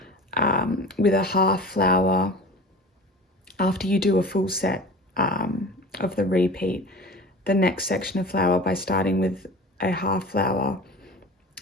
with a half flower, after you do a full set of the repeat, the next section of flower, by starting with a half flower,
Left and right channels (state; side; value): normal; both; correlation 0.37